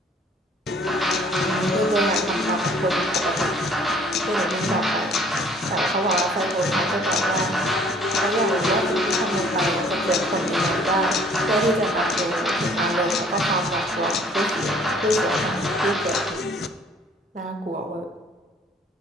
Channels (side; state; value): both; normal; correlation 0.56